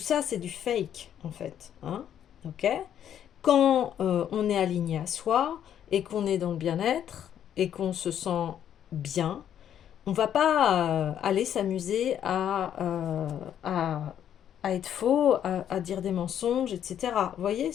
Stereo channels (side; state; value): right; quieter; 9.8 dB